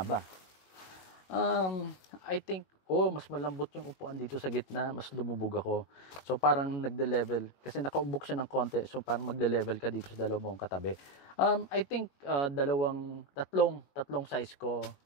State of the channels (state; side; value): late; right; 19 ms